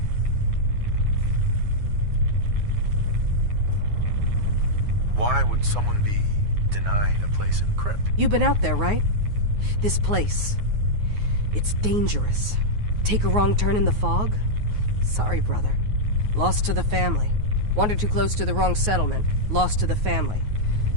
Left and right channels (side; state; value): left; late; 9.5 ms